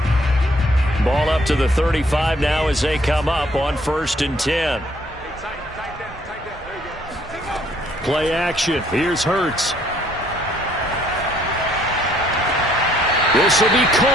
Ball up to the 35 now as they come up on 1st and 10. Play action. Here's Hurts. This will be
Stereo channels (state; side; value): normal; both; correlation 0.64